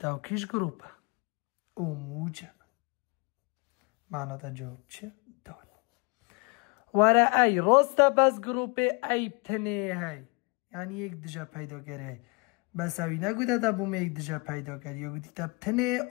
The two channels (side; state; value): right; quieter; 30.6 dB